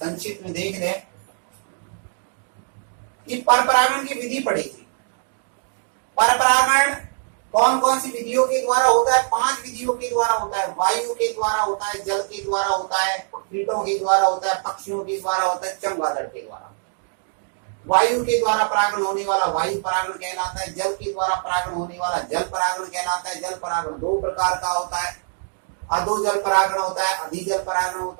में देख लें कि परपरागण की विधि पढ़ी थी। परपरागण कौन कौन सी विधियों के द्वारा होता है? 5 विधियों के द्वारा होता है। वायु के द्वारा होता है, जल के द्वारा होता है, कीटों के द्वारा होता है, पक्षियों के द्वारा होता है, चमगादड़ के द्वारा। वायु के द्वारा परागण होने वाला वायु परागण कहलाता है। जल के द्वारा परागण होने वाला जल परागण कहलाता है। जल परागण 2 प्रकार का होता है, अधो जल परागण होता है, अधिजल परागण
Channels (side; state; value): left; silent; digital silence